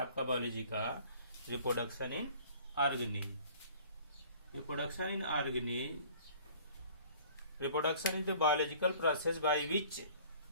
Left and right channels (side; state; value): both; inverted; correlation -0.50